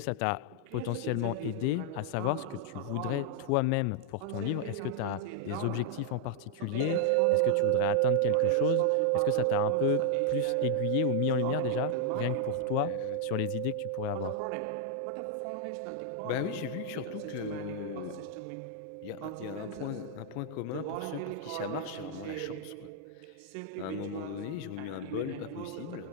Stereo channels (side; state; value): both; different; correlation 0.00